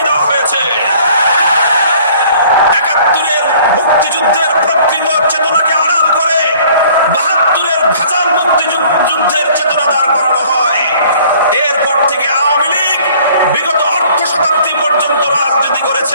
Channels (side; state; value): both; inverted; correlation -0.54